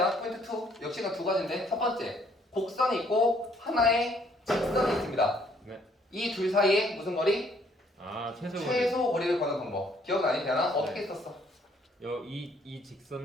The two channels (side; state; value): both; normal; correlation 0.64